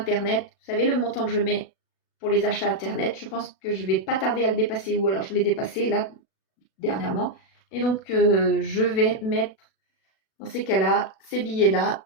Vous savez, le montant que je mets pour les achats Internet, je pense que je ne vais pas tarder à le dépasser, ou alors je l'ai dépassé là, dernièrement. Et donc, je vais mettre, dans ces cas-là, ces billets-là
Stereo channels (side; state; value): right; late; 37 ms